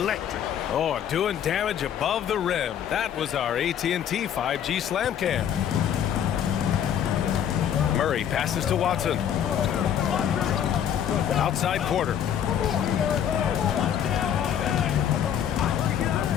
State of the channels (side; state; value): right; quieter; 9.4 dB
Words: Oh, doing damage above the rim. That was our AT&T 5G Slam Cam. Murray passes to Watson. Outside Porter.